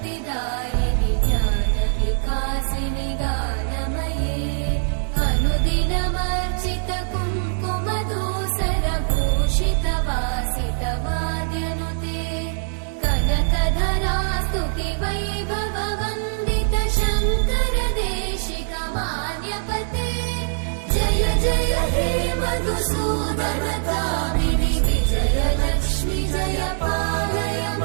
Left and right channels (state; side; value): silent; left; digital silence